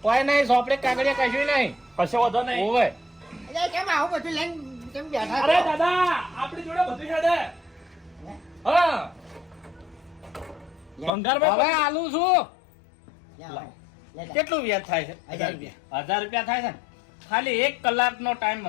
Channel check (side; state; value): right; drops out; at 11.1 s